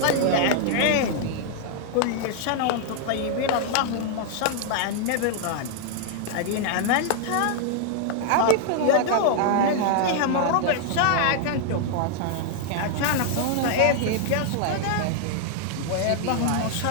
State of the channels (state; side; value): different; both; correlation 0.00